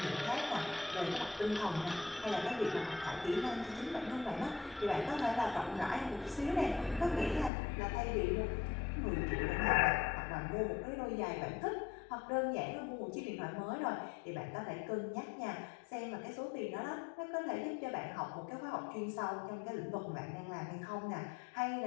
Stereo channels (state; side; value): drops out; right; at 7.5 s